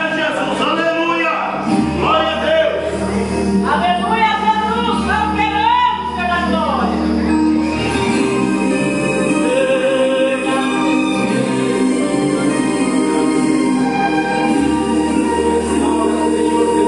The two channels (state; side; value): identical; both; correlation 1.00